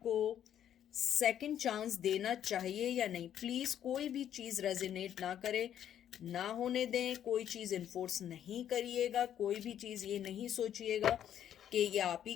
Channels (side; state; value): right; quieter; 10.2 dB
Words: सेकंड चांस देना चाहिए या नहीं। प्लीज़ कोई भी चीज़ रेजोनेट ना करे, ना होने दें। कोई चीज़ इन्फोर्स नहीं करिएगा, कोई भी चीज़ ये नहीं सोचिएगा कि ये आप ही